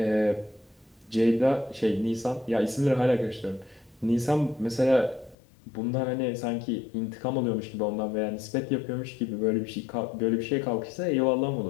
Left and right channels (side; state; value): right; drops out; at 5.4 s